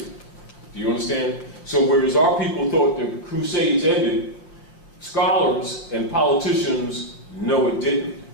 Do you understand? So whereas our people thought the crusades ended, scholars and politicians know it didn't.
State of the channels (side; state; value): right; late; 5.8 ms